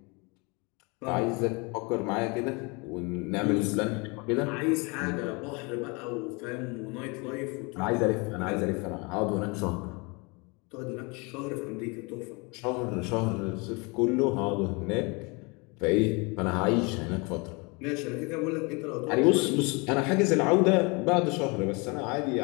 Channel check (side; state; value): right; quieter; 29.3 dB